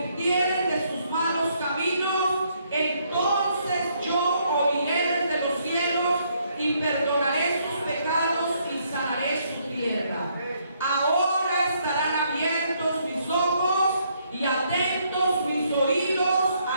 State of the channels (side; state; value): both; inverted; correlation -0.71